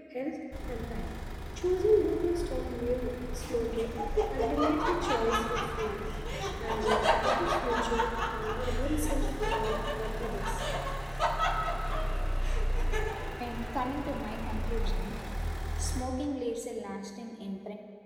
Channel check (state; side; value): identical; both; correlation 1.00